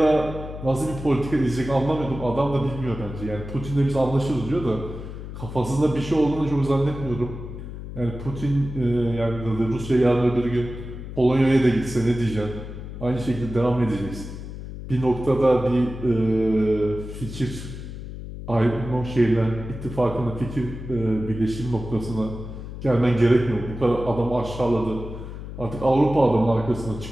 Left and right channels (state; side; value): noise; left; hum, 10 dB below the sound